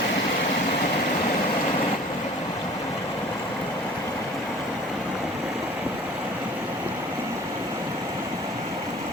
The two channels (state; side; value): normal; both; correlation 0.48